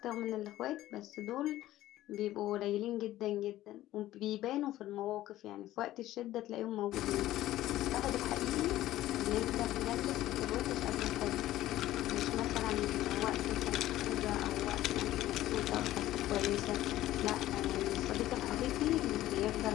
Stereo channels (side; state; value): right; quieter; 14.8 dB